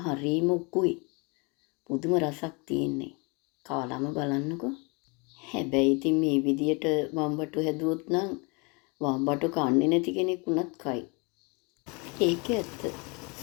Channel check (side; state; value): right; quieter; 30.5 dB